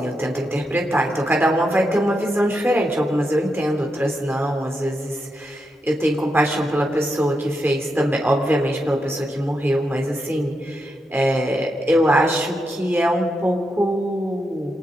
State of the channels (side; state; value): both; normal; correlation 0.84